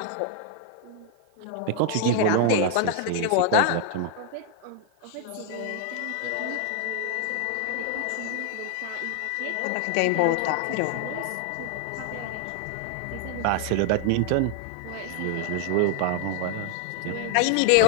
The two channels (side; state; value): both; different; correlation 0.00